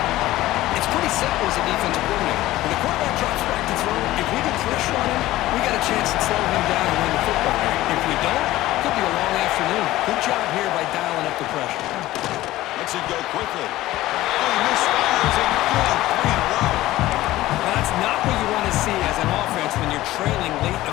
It's pretty simple as a defensive coordinator. When the quarterback drops back to throw, if we get pressure on him, we got a chance to slow him down and win the football game. If we don't, it could be a long afternoon. Good job here by dialing up the pressure. Lets it go quickly. Oh, he misfires it. Good. 3 in a row. Now, that's not what you want to see as an offense when you're trailing late in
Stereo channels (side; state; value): right; quieter; 16.3 dB